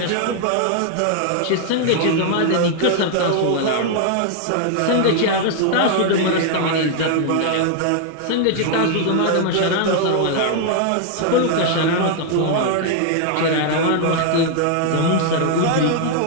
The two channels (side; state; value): both; different; correlation 0.00